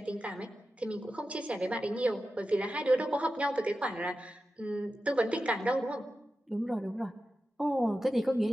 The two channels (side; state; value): both; normal; correlation 0.92